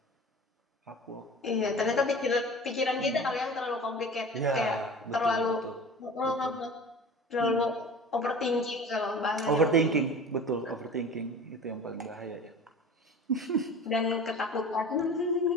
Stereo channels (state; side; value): normal; both; correlation 0.38